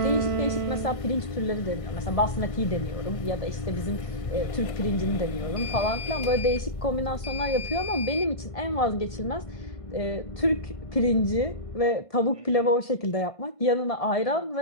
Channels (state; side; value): late; right; 1.5 ms